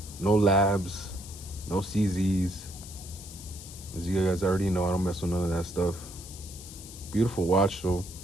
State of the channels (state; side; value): noise; left; hiss, 15 dB below the sound